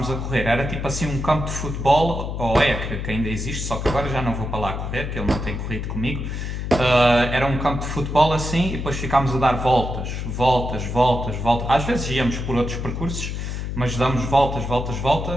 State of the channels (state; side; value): noise; left; hum, 4 dB below the sound